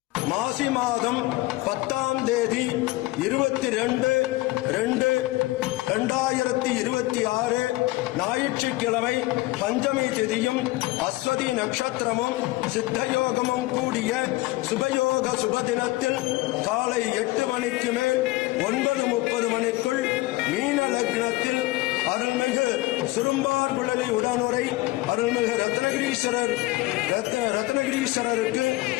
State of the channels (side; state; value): right; quieter; 19.8 dB